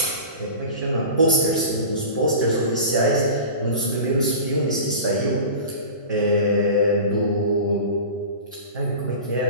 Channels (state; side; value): inverted; both; correlation -0.34